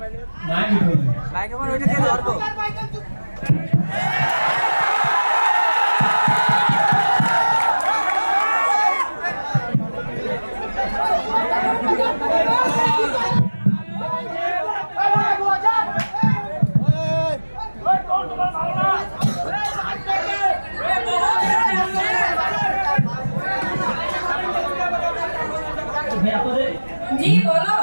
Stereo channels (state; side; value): inverted; both; correlation -1.00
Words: মাইক ধরে বাইক আমার ওইটা দিয়ে ধরবো জি বলো